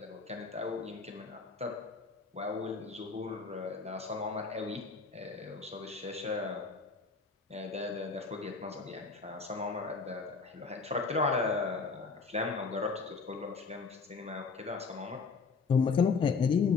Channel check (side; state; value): right; quieter; 4.7 dB